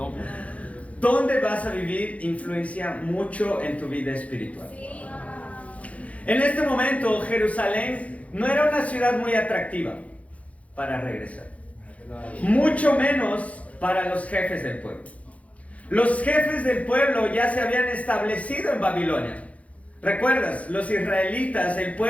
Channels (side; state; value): right; late; 0.066 ms